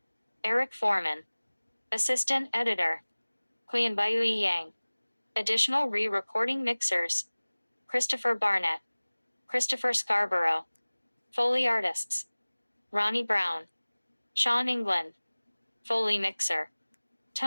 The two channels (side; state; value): both; inverted; correlation -1.00